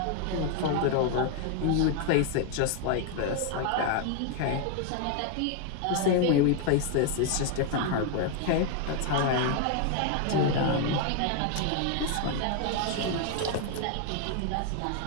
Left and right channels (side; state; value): both; different; correlation 0.00